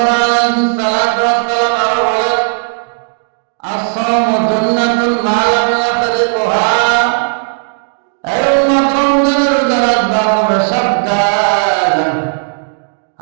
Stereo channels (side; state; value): left; silent; digital silence